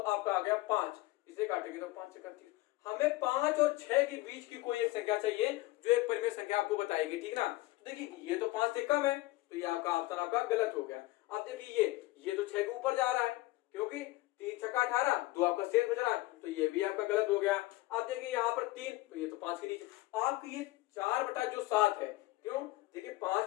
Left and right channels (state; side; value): quieter; right; 19.4 dB